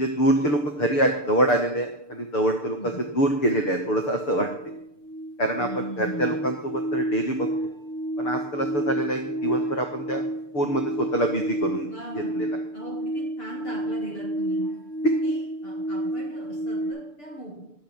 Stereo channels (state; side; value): late; right; 6.8 ms